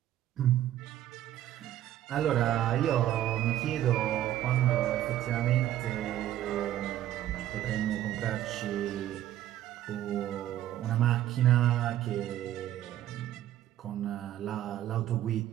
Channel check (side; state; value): left; quieter; 12.7 dB